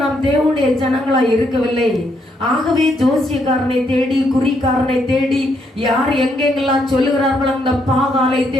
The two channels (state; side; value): normal; both; correlation 0.75